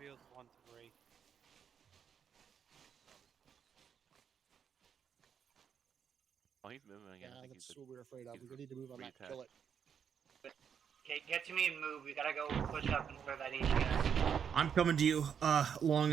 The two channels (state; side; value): quieter; left; 7.6 dB